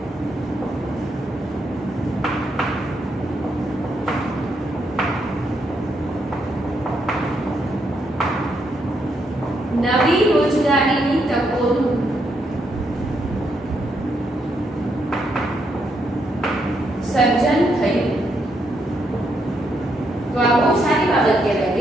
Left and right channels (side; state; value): both; normal; correlation 0.78